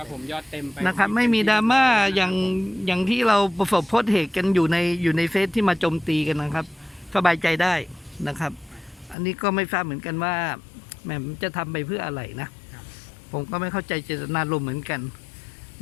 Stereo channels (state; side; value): drops out; right; at 9.2 s